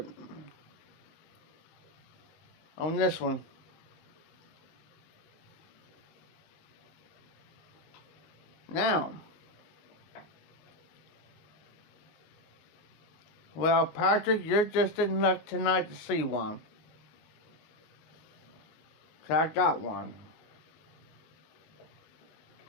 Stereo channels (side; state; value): right; late; 19 ms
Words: On this one. Now, well, Patrick, you're just in luck tonight to see one. 'Cause I got one.